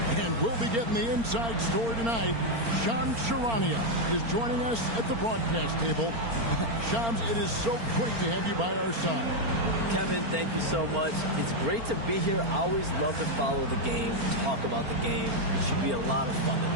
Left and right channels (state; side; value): late; left; 4.4 ms